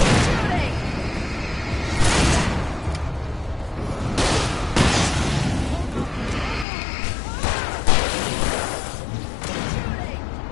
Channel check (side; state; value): right; drops out; at 6.7 s